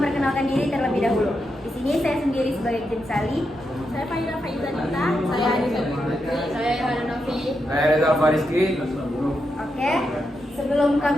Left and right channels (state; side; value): normal; both; correlation 0.85